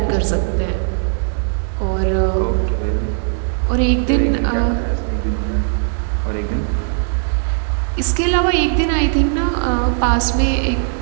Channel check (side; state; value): left; silent; digital silence